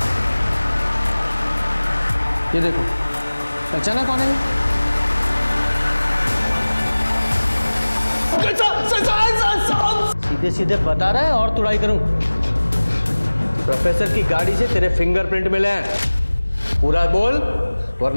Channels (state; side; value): inverted; both; correlation -1.00